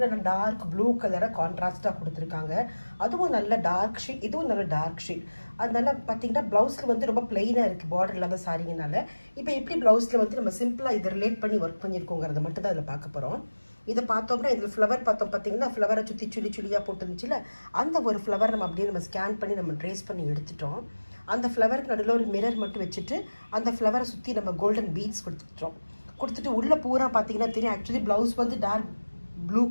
டார்க் ப்ளூ கலரை கான்ட்ராஸ்டாக கொடுத்துருக்காங்க. அதுவும் நல்ல டார்க் ஷீட், இதுவும் நல்ல டார்க் ஷீட். அதனால பார்த்தீங்கன்னா ப்ளவுஸில் வந்து ரொம்ப பிளெயினாக இருக்குது பார்டர் இல்லாத சாரிங்கனால. இப்போ எப்படி ப்ளவுஸில் வந்து நம்ம சிம்பிளாக இதை ரிலேட் பண்ணி ஒர்க் பண்ணியிருக்கோங்கிறத மட்டும் தான் இதில் பார்க்க போகிறோம். இதை பார்த்தோம்னா இதில் ஃப்ளவர் பார்த்தோம் பார்த்தீங்கன்னா ஃப்ளவரை சுற்றி சுழியாக போட்டுருந்துச்சுல அந்த ஒரு ஃப்ளவர் நம்ம அப்படியே நம்ம ஸ்கேன் பண்ணி நம்ம ட்ரேஸ் பண்ணி எடுத்துட்டோம். அந்த ஃப்ளவருக்கு நடுவில் ஒரு மிரர் மட்டும் வச்சுட்டு அந்த ஃப்ளவரை சுற்றி நம்ம கோல்டன் பீட்ஸ் கொடுத்துட்டு உள்ளே பூரா பார்த்தீங்கன்னா தெரியும். ஆக்சுவலி ப்ளவுஸ் வந்து டார்க் ப்ளூ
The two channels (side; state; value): both; inverted; correlation -1.00